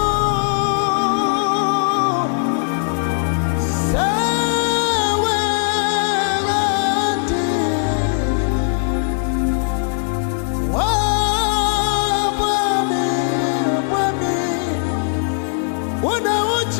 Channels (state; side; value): silent; right; digital silence